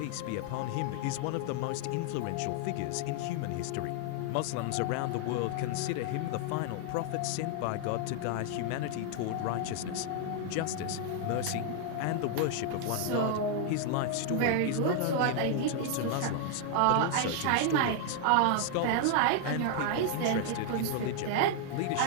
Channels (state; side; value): different; both; correlation 0.00